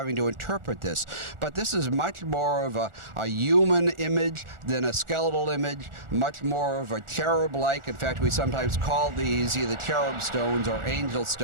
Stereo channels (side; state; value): left; late; 1.4 ms